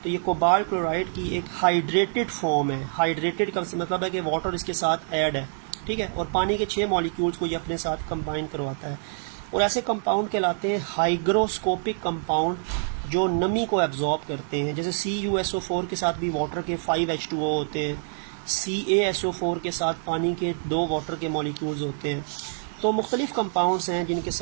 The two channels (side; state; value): left; silent; digital silence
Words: तो ये कोबाल्ट क्लोराइड की एक हाइड्रेटेड फॉर्म है। हाइड्रेटेड का मतलब है कि वाटर इसके साथ ऐड है, ठीक है, और पानी के 6 मॉलिक्यूल्स को ये अपने साथ कंबाइन करवाता है। और ऐसे कंपाउंड कहलाते हैं हाइग्रोस्कोपिक कंपाउंड जो नमी को एब्जॉर्ब करते हैं। जैसे CuSO4 के साथ भी वाटर के 5H2O होते हैं, CaSO4 के साथ पानी के 2 वाटर के मॉलिक्यूल्स होते हैं। तो मुख्तलिफ कंपाउंड्स हैं जिनके